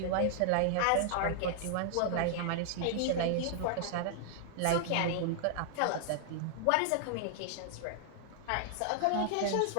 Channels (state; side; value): different; both; correlation -0.01